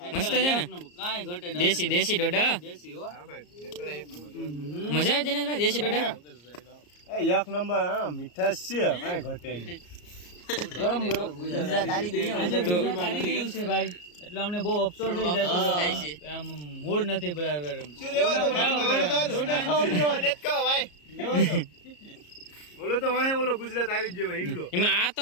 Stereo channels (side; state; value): right; late; 34 ms